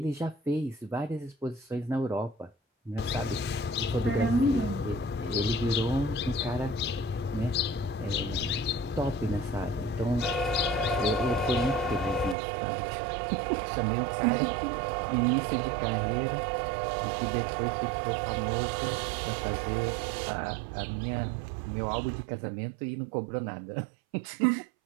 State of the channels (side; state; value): left; drops out; at 12.4 s